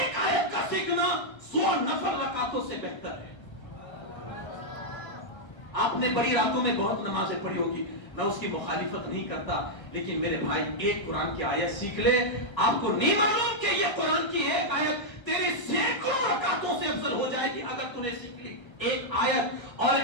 آیت کا سیکھنا 100 نفل رکعتوں سے بہتر ہے۔ آپ نے بڑی راتوں میں بہت نمازیں پڑھی ہوگی، میں اس کی مخالفت نہیں کرتا، لیکن میرے بھائی ایک قرآن کی آیت سیکھ لے، آپ کو نہیں معلوم کہ یہ قرآن کی ایک آیت تیری سینکڑوں رکعتوں سے افضل ہو جائے گی اگر تم نے سیکھ لی ایک آیت اور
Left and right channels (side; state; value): right; late; 1.5 ms